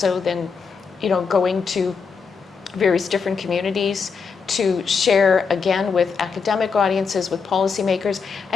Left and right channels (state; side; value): quieter; right; 5.5 dB